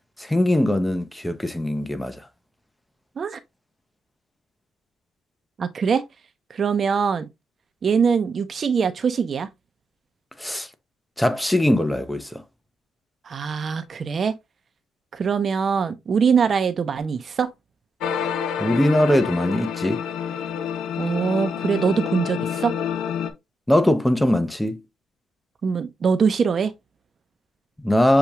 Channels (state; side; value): normal; both; correlation 0.86